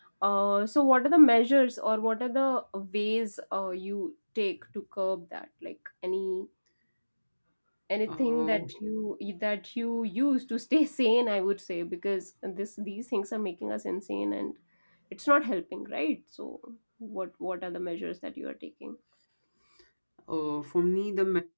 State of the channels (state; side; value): inverted; both; correlation -1.00